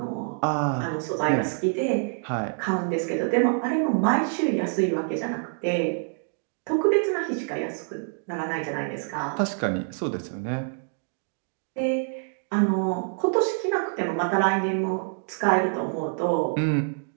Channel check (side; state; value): left; silent; 58 dB below the other